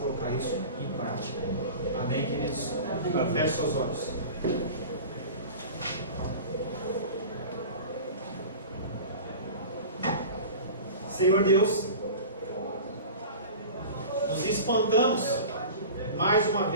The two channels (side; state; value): both; inverted; correlation -0.35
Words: isso em prática. Amém, queridos? Feche seus olhos. Senhor Deus, nos espantamos mais uma